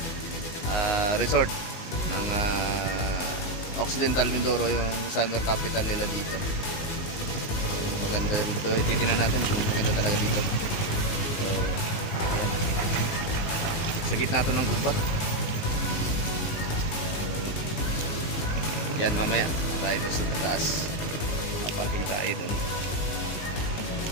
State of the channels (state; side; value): late; right; 18 ms